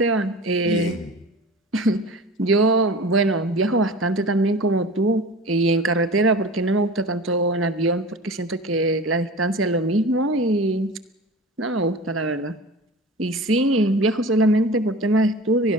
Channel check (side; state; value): both; normal; correlation 0.36